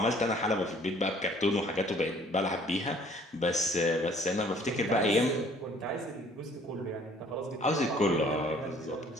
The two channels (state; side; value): normal; both; correlation 0.57